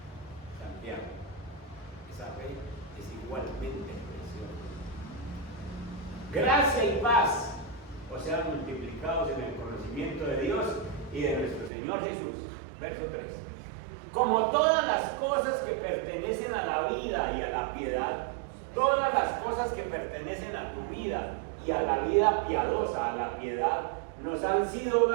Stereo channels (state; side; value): drops out; left; at 11.7 s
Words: Santiago. Esa fe es igualmente preciosa. Gracia y paz os sean multiplicados en el conocimiento de Dios y de nuestro Señor Jesús. Verso 3. Como todas las cosas que pertenecen a la vida y a la piedad, todas las cosas que pertenecen a tu vida y a la vida piadosa, a la piedad, nos han sido